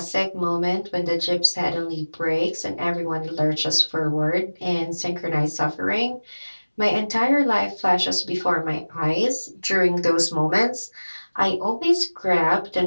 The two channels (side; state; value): both; inverted; correlation -1.00